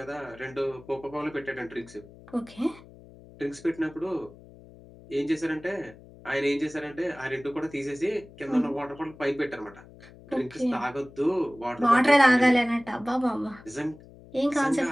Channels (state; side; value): noise; left; hum, 21 dB below the sound